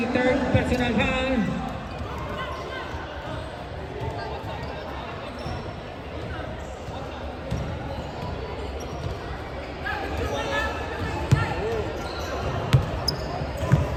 third personal foul.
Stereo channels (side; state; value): both; identical; correlation 1.00